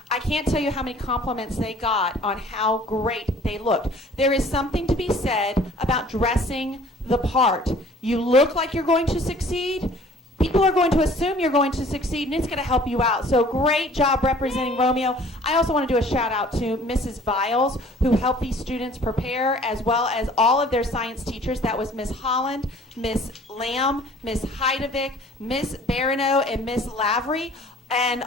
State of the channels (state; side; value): normal; both; correlation 0.52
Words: I can't tell you how many compliments they got on how great they looked. There is something to be said about dressing the part. You look like you're going to succeed. People are going to assume you're going to succeed, and it's going to help you out. So great job representing Romeo. I also want to do a shout out to Mrs. Viles, who helped these students prepare, as well as all of their science teachers. That was Miss Holland, Miss Lamb, Miss Heidevick, Miss Barano, and Miss Lavery, and